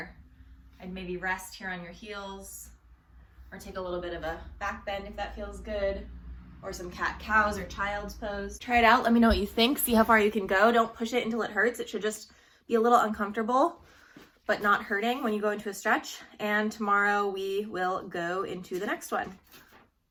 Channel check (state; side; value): identical; both; correlation 1.00